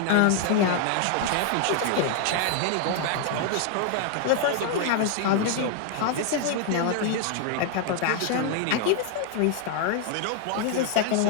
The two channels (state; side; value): different; both; correlation 0.00